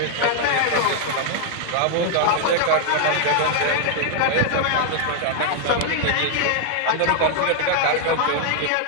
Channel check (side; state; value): both; different; correlation 0.00